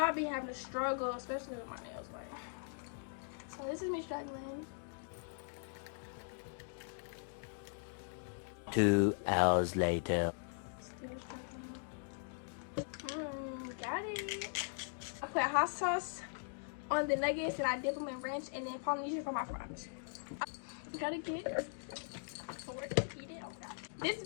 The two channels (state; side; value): silent; right; digital silence